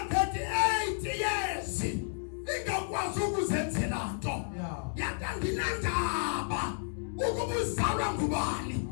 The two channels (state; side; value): silent; right; digital silence